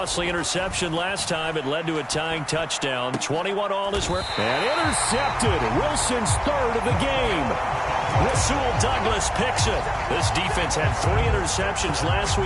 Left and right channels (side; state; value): both; identical; correlation 1.00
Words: interception last time. It led to a tying touchdown. 21 all is where. And intercepted. Wilson's third of the game. Rasul Douglas picks it. This defense had 3 interceptions last